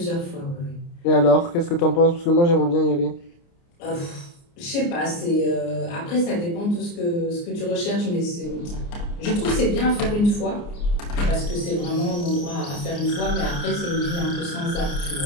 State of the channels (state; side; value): late; right; 29 ms